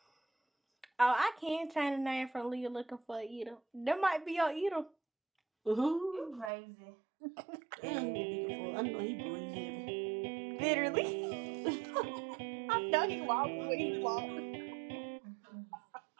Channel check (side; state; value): left; drops out; at 6.5 s